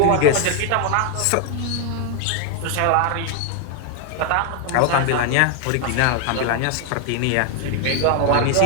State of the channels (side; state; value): both; different; correlation 0.00